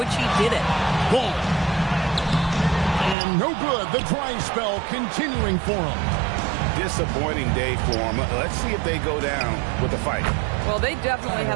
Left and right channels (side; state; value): left; drops out; at 3.2 s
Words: he did it. Ball. And no good. The dry spell continuing for him. Disappointing day for them. Let's see if they go down with a fight. Well, they definitely